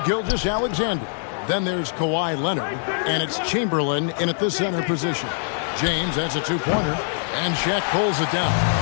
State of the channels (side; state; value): right; silent; digital silence